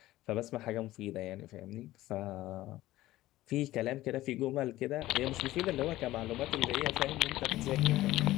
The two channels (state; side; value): quieter; right; 16.1 dB